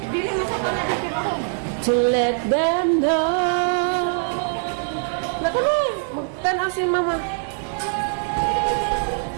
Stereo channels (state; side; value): silent; left; digital silence